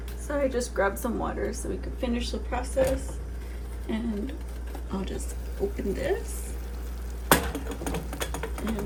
So I just grabbed some water so we could finish the process. And I'll just open this.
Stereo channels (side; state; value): both; identical; correlation 1.00